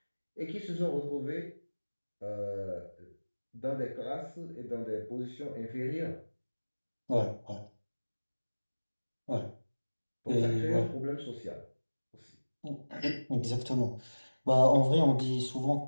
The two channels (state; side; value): inverted; both; correlation -1.00